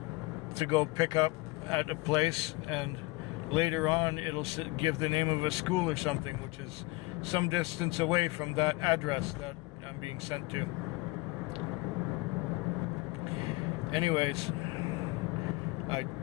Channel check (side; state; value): right; quieter; 22.5 dB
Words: to go pick up at a place, and later on it'll give the name of a school or something, which is some distance away from that address that I'm being sent to. Anyways, I